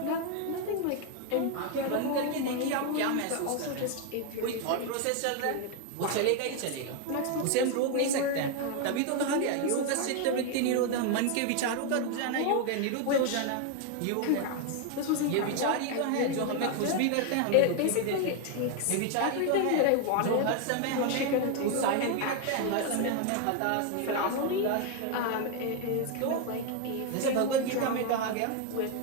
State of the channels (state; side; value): different; both; correlation 0.01